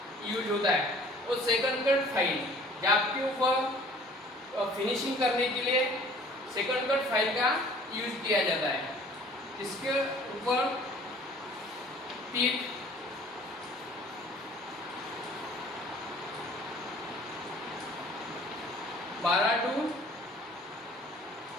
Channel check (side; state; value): both; normal; correlation 0.52